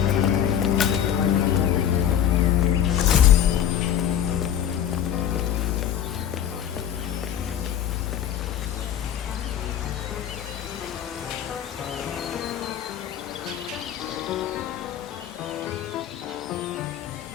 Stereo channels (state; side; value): quieter; right; 9.8 dB